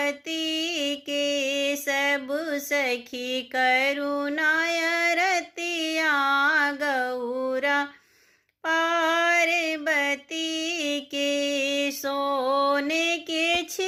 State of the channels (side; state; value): both; identical; correlation 1.00